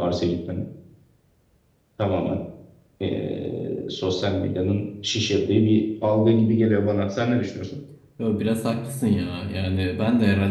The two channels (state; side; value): identical; both; correlation 1.00